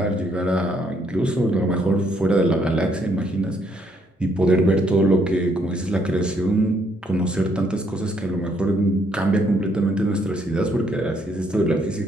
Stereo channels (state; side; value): normal; both; correlation 0.70